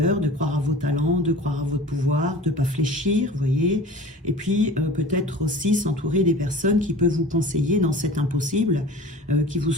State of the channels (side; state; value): both; normal; correlation 0.40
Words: de croire à vos talents, de croire à votre pouvoir, de ne pas fléchir, vous voyez, et puis peut-être aussi s'entourer des personnes qui peuvent vous conseiller dans cet impossible, qui vous